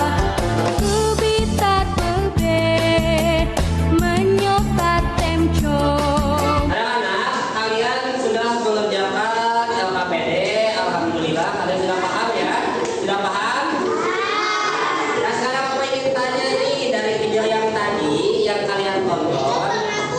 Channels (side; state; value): both; identical; correlation 1.00